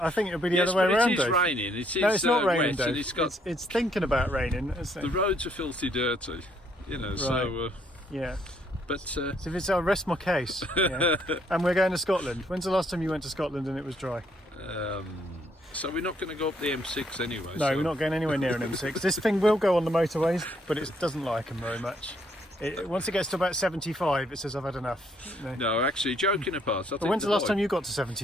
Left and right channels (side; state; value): both; normal; correlation 0.69